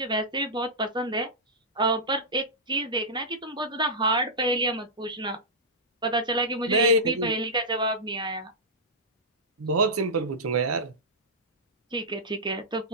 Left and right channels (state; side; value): normal; both; correlation -0.13